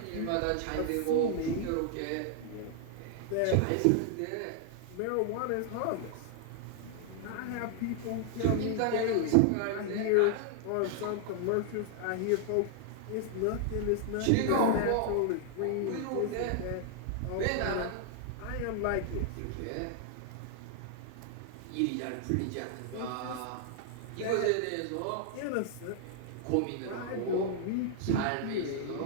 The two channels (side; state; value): both; different; correlation 0.00